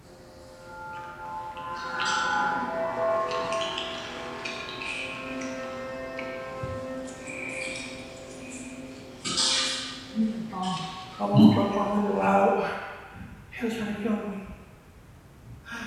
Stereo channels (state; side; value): identical; both; correlation 1.00